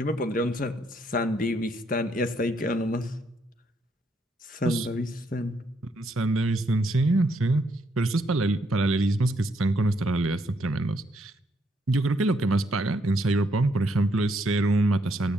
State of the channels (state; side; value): normal; both; correlation 0.73